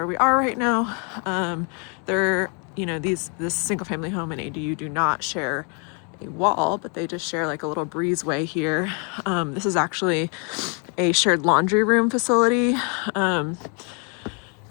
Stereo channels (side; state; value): right; quieter; 37.6 dB